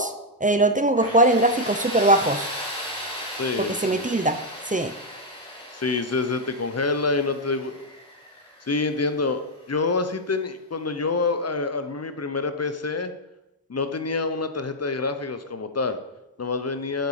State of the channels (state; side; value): normal; both; correlation -0.01